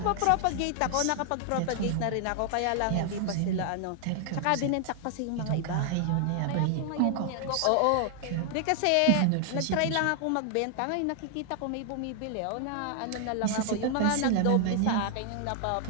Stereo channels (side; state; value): both; different; correlation 0.00